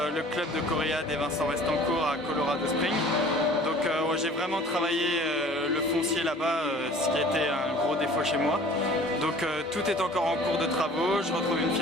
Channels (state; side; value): normal; both; correlation 0.48